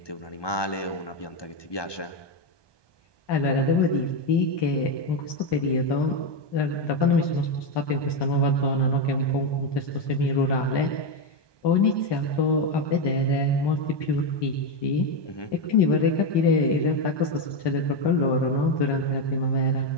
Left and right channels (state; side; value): late; right; 1.2 ms